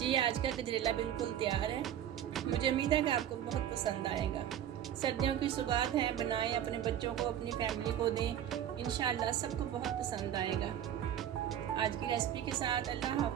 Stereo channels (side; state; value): left; quieter; 10.5 dB